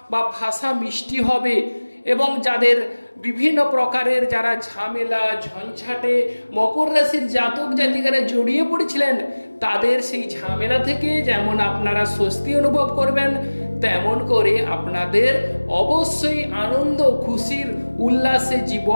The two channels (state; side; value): inverted; both; correlation -1.00